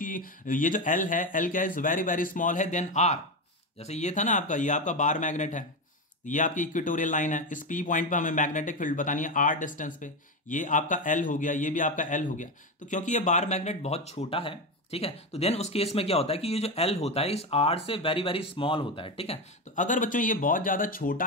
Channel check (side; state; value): both; normal; correlation 0.15